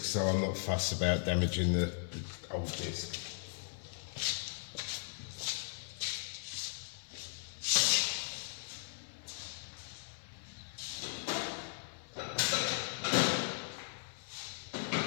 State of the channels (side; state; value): right; silent; 53 dB below the other